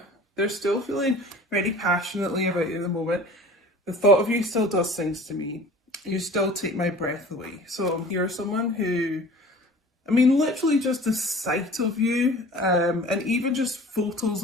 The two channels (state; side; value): normal; both; correlation 0.44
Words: they're still feeling very passionately about you at the moment. The thought of you still does things to me. You still take my breath away. So you're someone who, I mean, literally just the sight of you, and even just photos